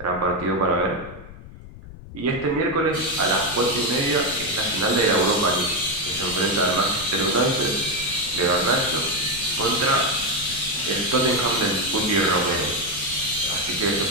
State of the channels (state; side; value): noise; left; rumble, 16 dB below the sound